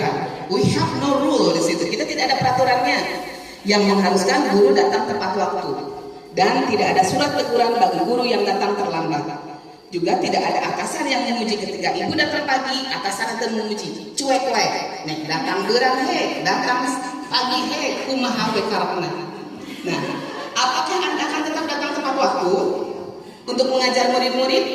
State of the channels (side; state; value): both; identical; correlation 1.00